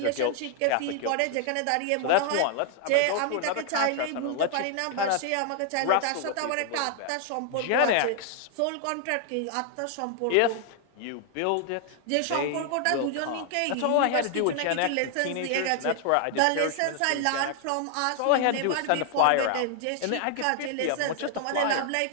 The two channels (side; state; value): both; different; correlation 0.00